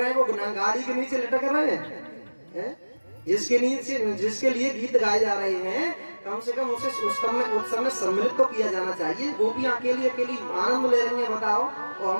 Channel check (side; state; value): both; inverted; correlation -1.00